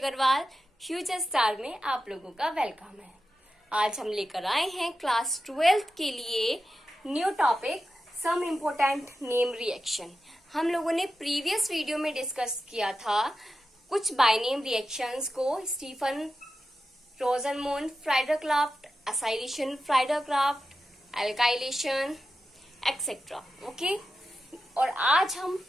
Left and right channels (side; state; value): both; normal; correlation 0.91